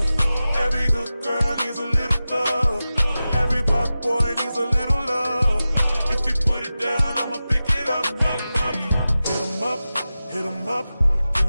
Every good girl needs a little thug. Every black boy needs a little love. If he put it down, I'ma pick it up, up, up. Hit him up. In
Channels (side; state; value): both; inverted; correlation -0.94